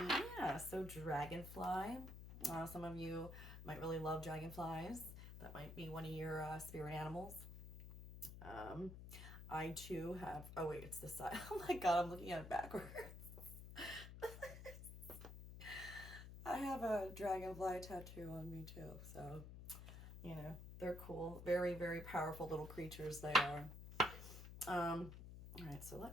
so Dragonfly. Some of you might really love dragonflies. That might be one of your spirit animals. I too have, oh wait, it's this side. Oh my God, I'm looking at it backwards. I have a dragonfly tattoo on me too, so, you know, they're cool. Very, very powerful little creatures they are. All right, so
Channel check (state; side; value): noise; left; hum, 11 dB below the sound